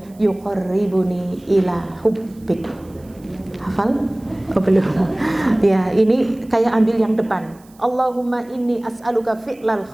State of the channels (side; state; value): right; noise; hiss, 29 dB below the sound